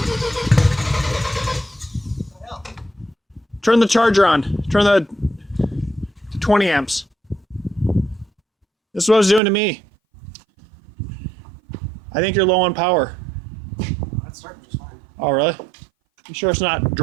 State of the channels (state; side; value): drops out; left; at 9.4 s